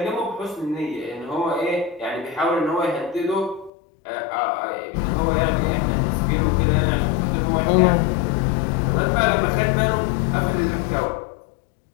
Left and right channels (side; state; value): right; drops out; at 3.7 s